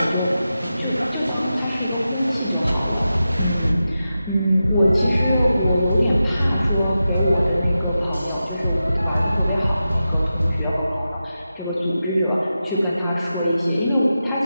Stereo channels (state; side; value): inverted; both; correlation -0.91